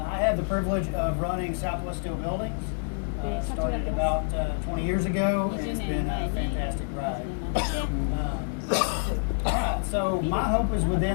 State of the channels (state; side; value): silent; right; digital silence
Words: had the privilege of running Southwest Steel Buildings. Started about 20 years ago, and it's been a fantastic ride. Alright, so my hope is